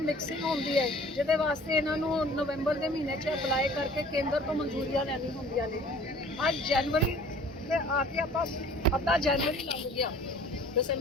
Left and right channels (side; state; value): both; normal; correlation 0.49